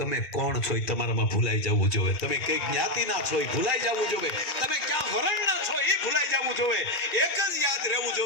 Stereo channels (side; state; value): right; late; 2.4 ms